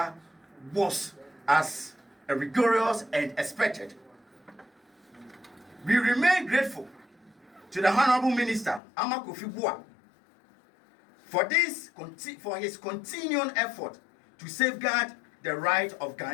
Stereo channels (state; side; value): drops out; right; at 8.8 s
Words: was as rigorous and expected. We remain grateful to the Honorable Minister Amakufibua for his continuing effort to safeguard the right of